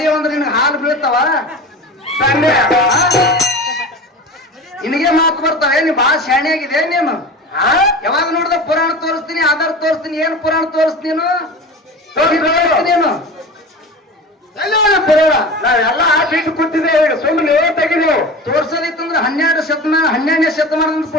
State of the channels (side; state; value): both; normal; correlation 0.33